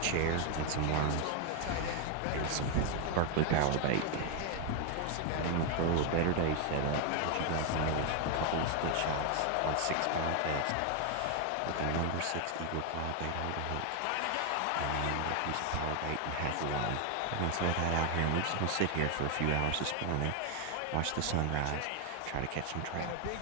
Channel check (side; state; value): both; different; correlation 0.01